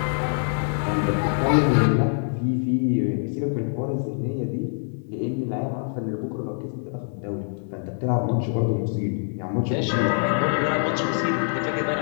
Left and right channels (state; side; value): silent; right; digital silence